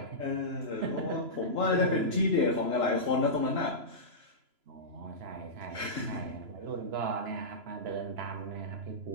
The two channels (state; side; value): late; left; 3.0 ms